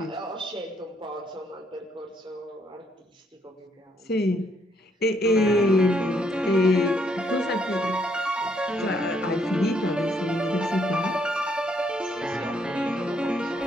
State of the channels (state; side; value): normal; both; correlation 0.71